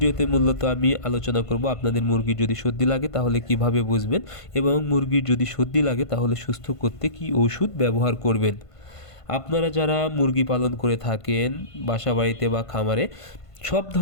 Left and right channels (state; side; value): late; right; 1.5 ms